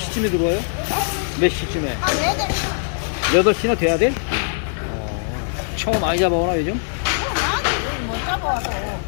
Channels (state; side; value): silent; right; digital silence